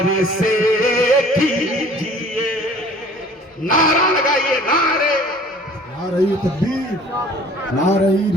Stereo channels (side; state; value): both; normal; correlation 0.50